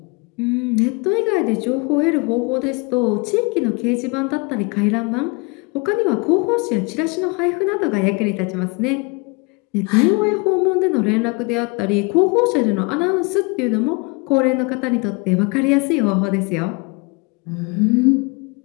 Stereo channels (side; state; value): right; quieter; 28.8 dB